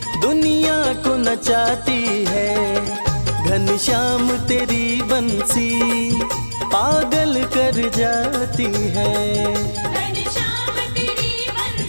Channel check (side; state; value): both; inverted; correlation -1.00